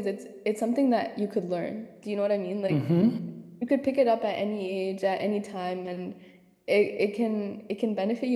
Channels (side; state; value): both; identical; correlation 1.00